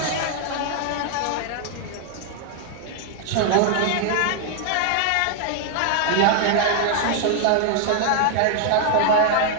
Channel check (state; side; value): different; both; correlation 0.00